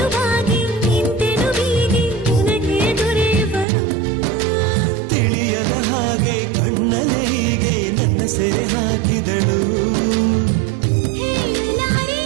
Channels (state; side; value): drops out; left; at 3.7 s